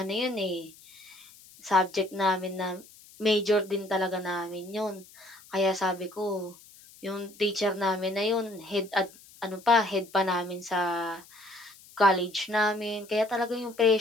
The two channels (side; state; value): left; noise; hiss, 23 dB below the sound